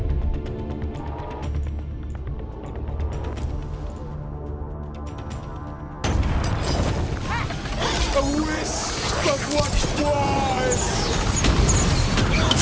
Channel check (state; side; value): identical; both; correlation 1.00